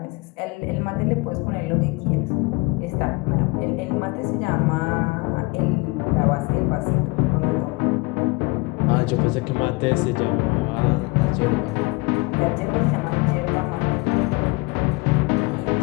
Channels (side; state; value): right; quieter; 25.9 dB